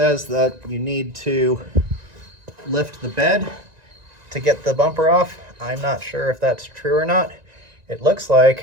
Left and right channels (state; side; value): late; left; 1.9 ms